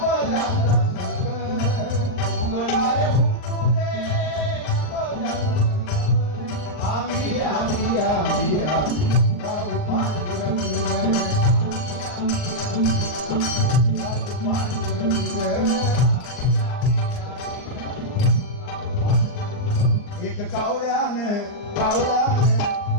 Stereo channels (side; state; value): right; late; 39 ms